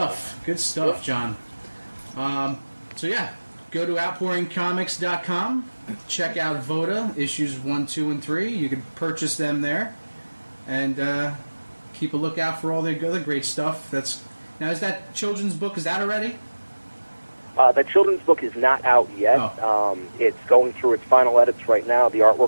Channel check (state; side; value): inverted; both; correlation -1.00